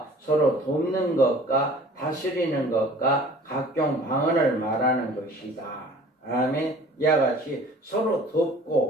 서로 돕는 것과 다스리는 것과 각종 방언을 말하는 것이다. 아멘. 이와 같이 서로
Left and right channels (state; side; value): normal; both; correlation 0.48